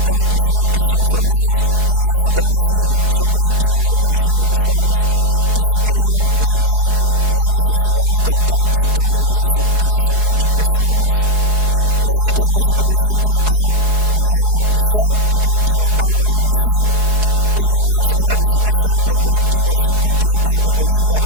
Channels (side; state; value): left; late; 4.7 ms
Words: todas personas que son formados en la fotografía, son colectivos de narraciones visuales que se crean desde la necesidad de contar historias, desde sus múltiples formas. Tenemos aquí presente a Mariana y Sol, del colectivo Agua de Brasil. Tenemos en representación del colectivo Sin Contrato de Bolivia,